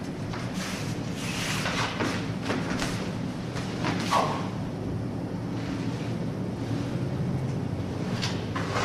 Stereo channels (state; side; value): identical; both; correlation 1.00